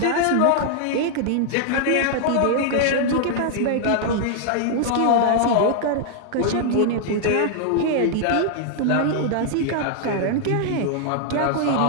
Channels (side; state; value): both; different; correlation -0.01